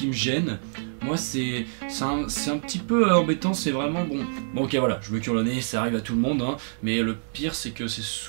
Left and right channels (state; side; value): silent; left; digital silence